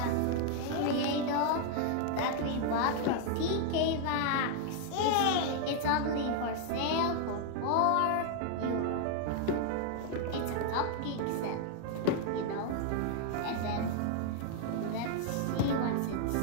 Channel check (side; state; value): both; different; correlation 0.00